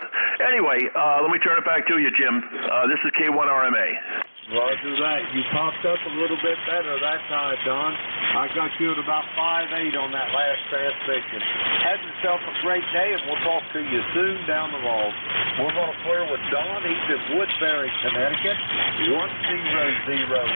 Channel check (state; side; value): inverted; both; correlation -1.00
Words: Anyway, let me turn it back to you, Jim. This is K1RMA. Roger that. You popped up a little bit better that time, Don. I got you at about 5'8" on that last transmission. Have yourself a great day, and we'll talk to you soon down the road. We're going to clear with Don. He's in Woodbury, Connecticut, 10019